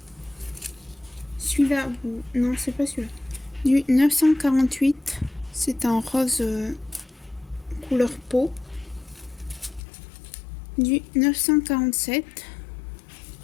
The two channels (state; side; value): drops out; right; at 9.8 s